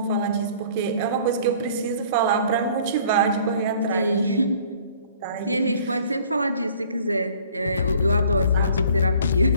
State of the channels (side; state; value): both; inverted; correlation -0.53